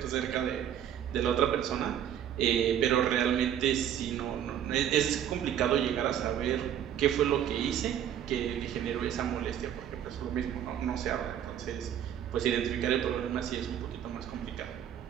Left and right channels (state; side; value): quieter; left; 9.9 dB